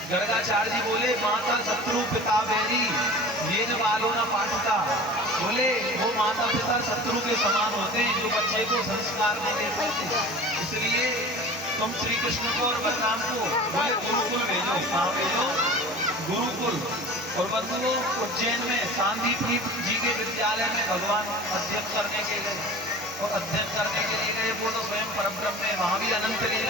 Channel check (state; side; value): normal; both; correlation 0.39